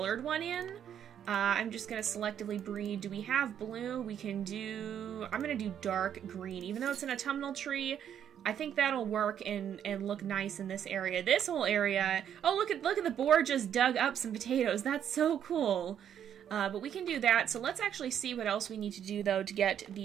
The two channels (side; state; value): left; quieter; 9.3 dB